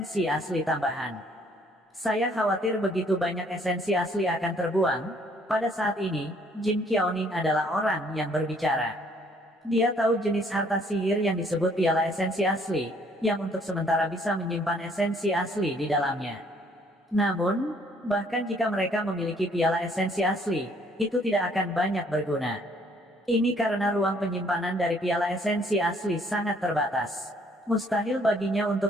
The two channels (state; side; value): normal; both; correlation 0.63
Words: asli tambahan. Saya khawatir begitu banyak esensi asli akan terbuang. Pada saat ini, Jin Qiaoning adalah orang yang berbicara. Dia tahu jenis harta sihir yang disebut piala esensi asli, yang untuk sementara bisa menyimpan esensi asli di dalamnya. Namun, bahkan jika mereka memiliki piala esensi asli, itu tidak akan banyak berguna. Ini karena ruang penyimpanan dari piala esensi asli sangat terbatas. Mustahil baginya